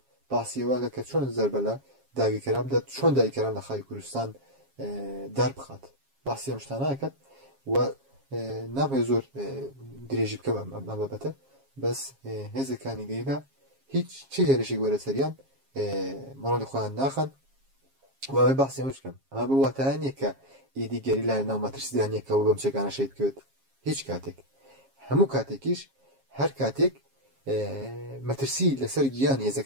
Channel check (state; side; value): late; left; 7.4 ms